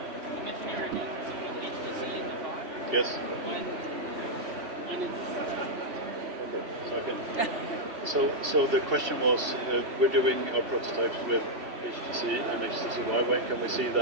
Yes. So the question was, we're doing our prototypes with HTC and HTC. When can we see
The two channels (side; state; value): left; late; 3.1 ms